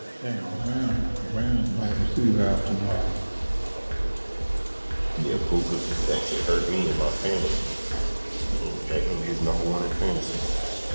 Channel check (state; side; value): inverted; both; correlation -1.00